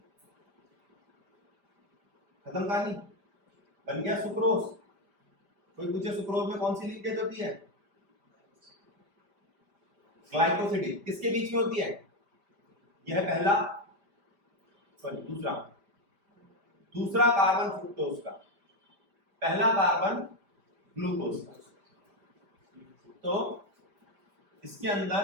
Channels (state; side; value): late; left; 5.1 ms